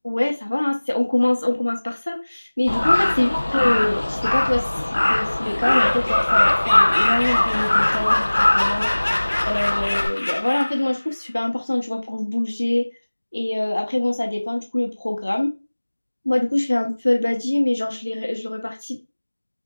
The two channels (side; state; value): both; inverted; correlation -1.00